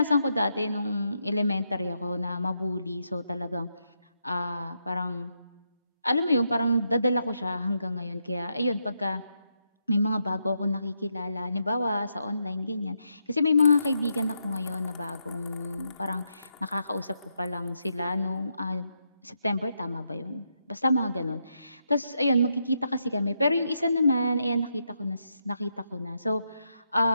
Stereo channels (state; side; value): inverted; both; correlation -0.81